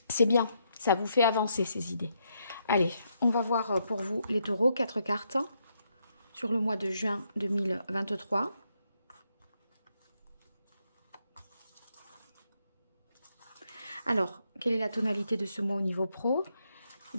bien, ça vous fait avancer ces idées. Allez, on va voir pour vous les taureaux, 4 cartes sur le mois de juin 2023. Alors, quelle est la tonalité de ce mois au niveau pro?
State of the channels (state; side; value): inverted; both; correlation -0.78